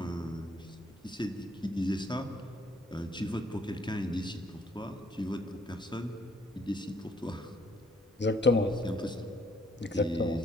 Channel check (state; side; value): normal; both; correlation 0.66